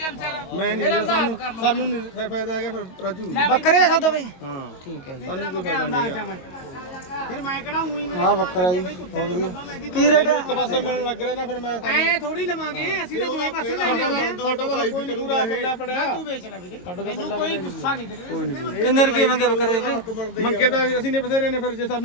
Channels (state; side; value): late; right; 22 ms